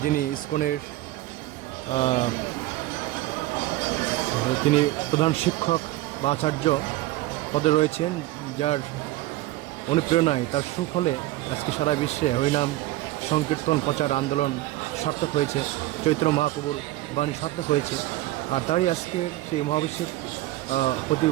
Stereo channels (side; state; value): left; quieter; 16.8 dB